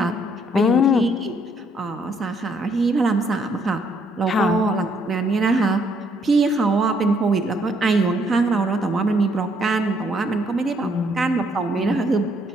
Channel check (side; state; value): both; normal; correlation 0.69